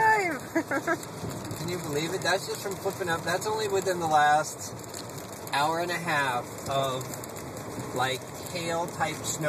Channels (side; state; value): both; identical; correlation 1.00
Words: Can you believe it? That's just from flipping up. That's only within the last hour and a half of, like, hail-type